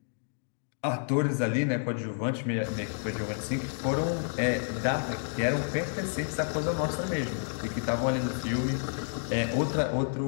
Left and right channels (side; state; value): right; silent; digital silence